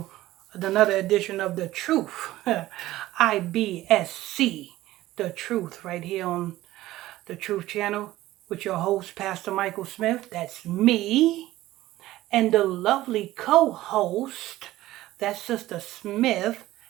another edition of The Truth. IBSC, The Truth, right here on The Truth Channel with your host, Pastor Michael Smith. That's me. And the lovely co host, that's Sister Smith.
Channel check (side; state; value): left; quieter; 16.0 dB